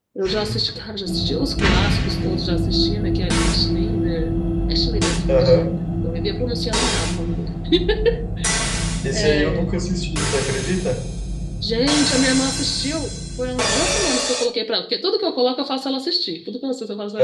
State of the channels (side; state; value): both; identical; correlation 1.00